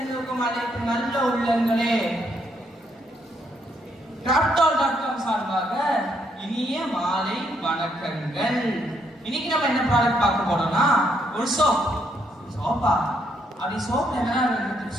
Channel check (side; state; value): both; normal; correlation 0.74